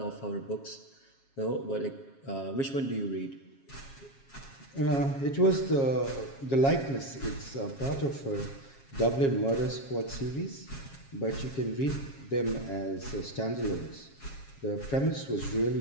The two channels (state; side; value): late; right; 7.4 ms